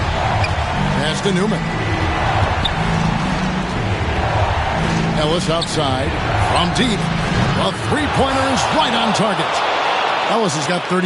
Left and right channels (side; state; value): both; identical; correlation 1.00